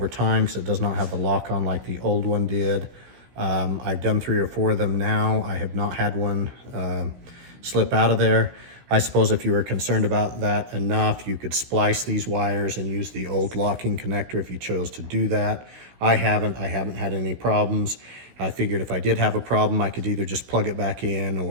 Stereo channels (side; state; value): left; late; 16 ms